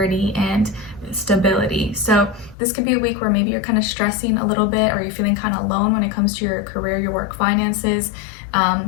and stability. So this could be a week where maybe you're kind of stressing a little bit, or you're feeling kind of alone when it comes to your career, your work, finances,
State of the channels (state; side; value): drops out; right; at 2.6 s